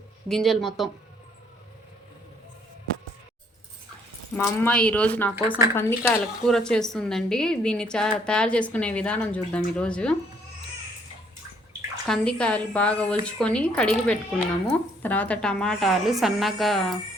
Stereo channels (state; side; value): normal; both; correlation 0.65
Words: గింజలు మొత్తం. మా అమ్మ ఈరోజు నా కోసం కందికాయల కూర చేస్తుందండి. దీన్ని తయారు చేసుకునే విధానం చూద్దాం. ఈరోజు కందికాయలు బాగా ఒలుచుకొని కడిగి పెట్టుకున్నాము. తర్వాత టమాటాలు సన్నగా